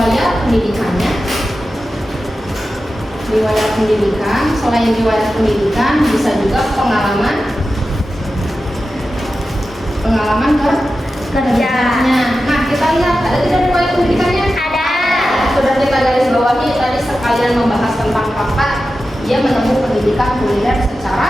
pendidikannya. Riwayat pendidikan, selain riwayat pendidikan bisa juga pengalaman kerjanya. Nah, kita lihat ada tidak riwayat pendidikannya? Ada. Sudah kita garis bawahi tadi sekalian membahas tentang fakta. Dia menempuh pendidikan kuliner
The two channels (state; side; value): normal; both; correlation 0.92